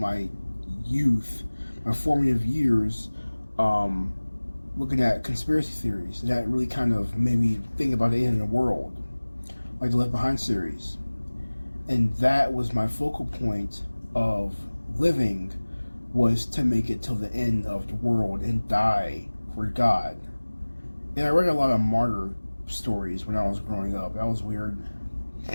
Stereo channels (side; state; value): both; inverted; correlation -1.00